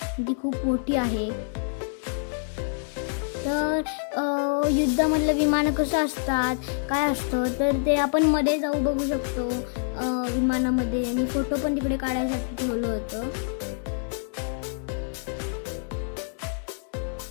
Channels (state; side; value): silent; right; digital silence